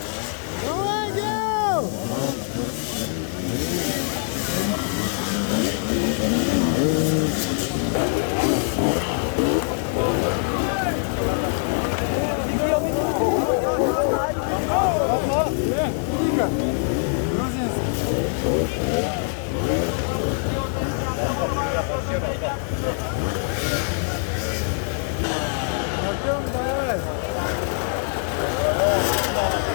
Давай, Гео. Тихо. Грузинский.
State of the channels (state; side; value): silent; right; 60 dB below the other